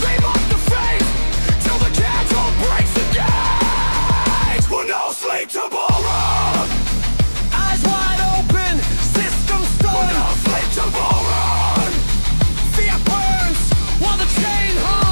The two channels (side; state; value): both; inverted; correlation -1.00